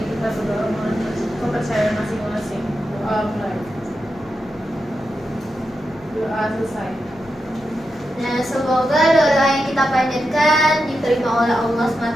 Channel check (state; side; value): noise; left; hum, 26 dB below the sound